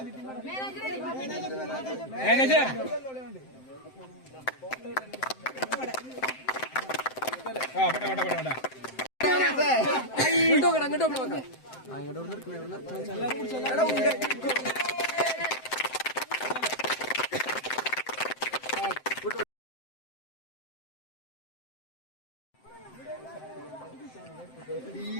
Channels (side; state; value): right; late; 7.7 ms